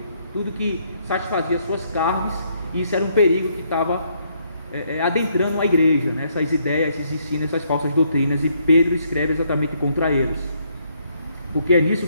tudo que satisfazia suas carnes, e isso era um perigo que estava adentrando a igreja, né? Essas ideias, esses ensinos, essas falsas doutrinas, e Pedro escreve exatamente contra eles, porque é nisso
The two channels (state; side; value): inverted; both; correlation -0.71